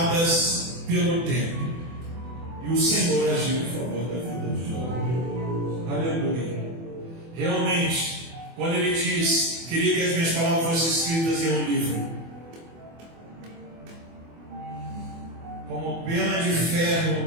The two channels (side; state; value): left; late; 24 ms